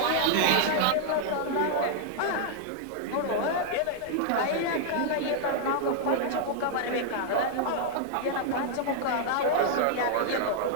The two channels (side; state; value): both; different; correlation 0.00